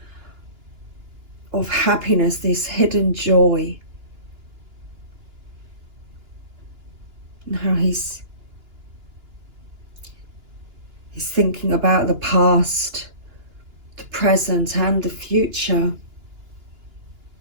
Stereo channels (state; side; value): late; left; 2.9 ms